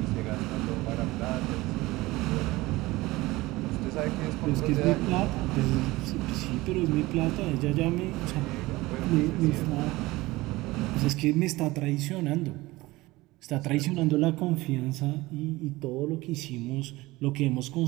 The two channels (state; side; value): quieter; left; 20.0 dB